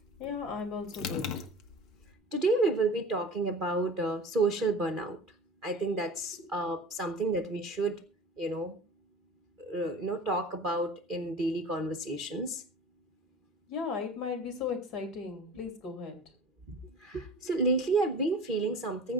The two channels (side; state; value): both; normal; correlation 0.38